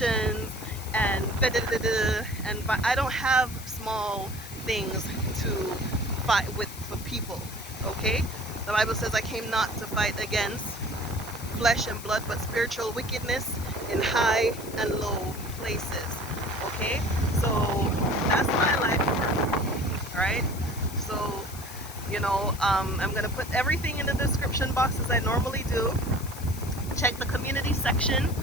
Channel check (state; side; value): noise; left; hiss, 14 dB below the sound